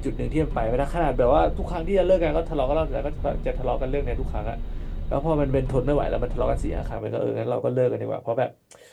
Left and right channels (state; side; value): identical; both; correlation 1.00